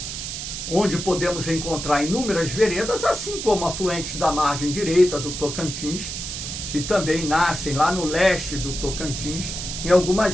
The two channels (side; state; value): right; noise; hiss, 6 dB below the sound